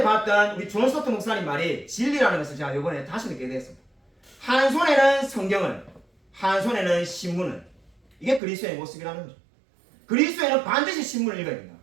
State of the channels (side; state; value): left; drops out; at 8.4 s